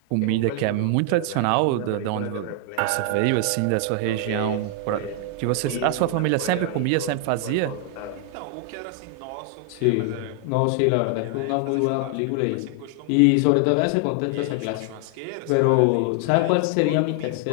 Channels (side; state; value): both; different; correlation 0.00